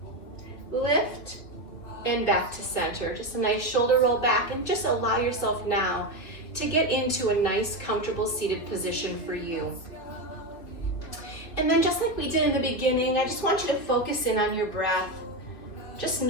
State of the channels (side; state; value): right; late; 2.4 ms